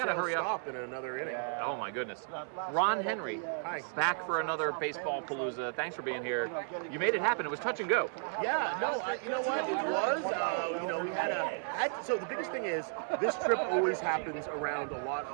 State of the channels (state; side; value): silent; left; 55 dB below the other